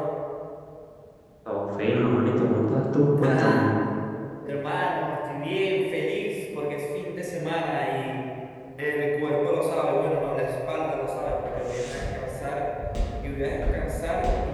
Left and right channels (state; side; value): identical; both; correlation 1.00